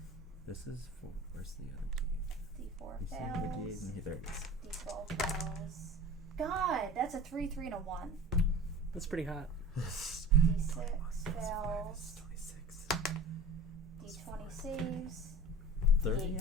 This is for where's the other D4 D8? fails. There it is. D12 fails. God, that's a 3, 3, and a 1. That's pretty hot. D6 fails. 26. D20 saves. 30 8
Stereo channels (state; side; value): normal; both; correlation 0.38